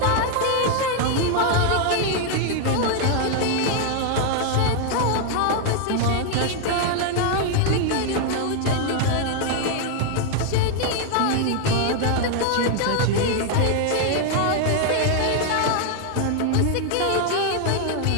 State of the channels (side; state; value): both; different; correlation 0.00